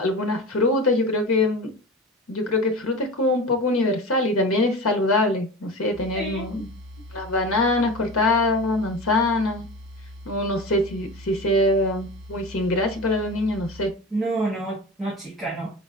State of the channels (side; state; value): both; normal; correlation 0.30